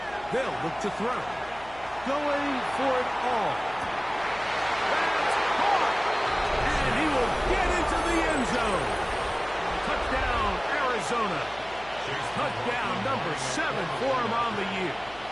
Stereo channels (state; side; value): noise; left; hum, 22 dB below the sound